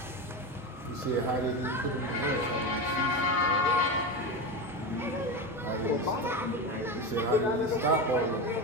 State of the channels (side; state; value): both; normal; correlation 0.19